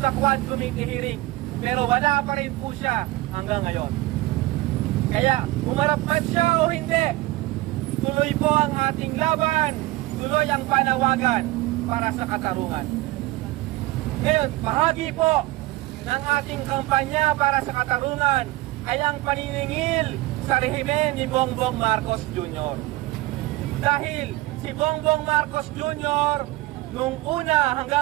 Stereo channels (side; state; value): left; quieter; 19.0 dB